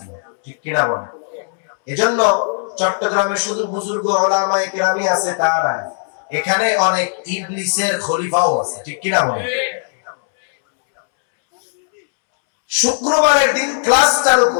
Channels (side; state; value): right; silent; 67 dB below the other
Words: ঠিক কিনা বলেন? এজন্য চট্টগ্রামে শুধু বুজুর্গ উলামায়ে কেরামি আছে তা না, এখানে অনেক ইবলিসের খলিফাও আছে, ঠিক কিনা বলেন? শুক্রবারের দিন ক্লাস চালু